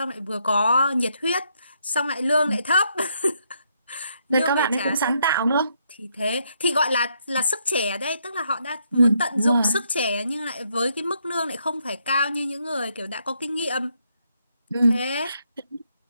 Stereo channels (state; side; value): inverted; both; correlation -0.75